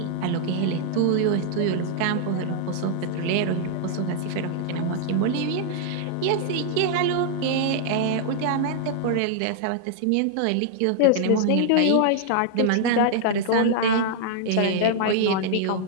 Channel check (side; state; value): both; different; correlation -0.01